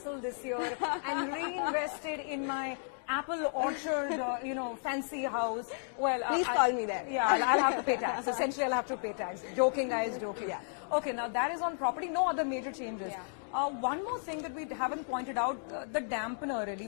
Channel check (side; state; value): right; silent; digital silence